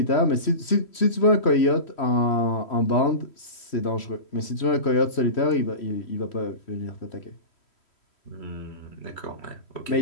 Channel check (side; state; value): right; late; 3.1 ms